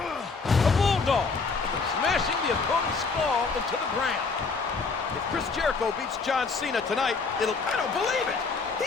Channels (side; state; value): right; quieter; 4.6 dB